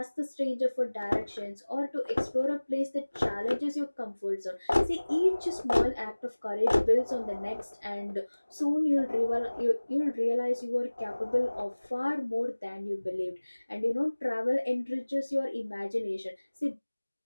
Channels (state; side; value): inverted; both; correlation -1.00